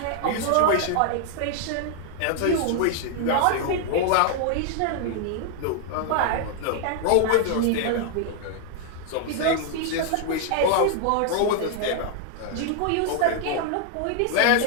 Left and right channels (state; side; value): different; both; correlation 0.00